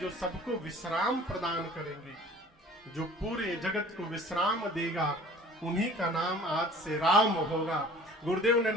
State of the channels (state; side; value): normal; both; correlation 0.48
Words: सबको विश्राम प्रदान करेंगे, जो पूरे जगत को विश्राम देगा। उन्हीं का नाम आज से राम होगा। गुरुदेव ने